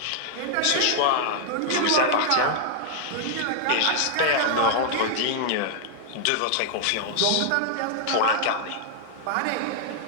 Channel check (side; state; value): both; different; correlation 0.00